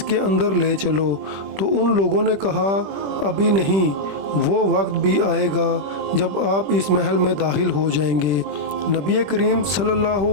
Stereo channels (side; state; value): left; late; 20 ms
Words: کے اندر لے چلو۔ تو ان لوگوں نے کہا، ابھی نہیں، وہ وقت بھی آئے گا جب آپ اس محل میں داخل ہو جائیں گے۔ نبی کریم صلی اللہ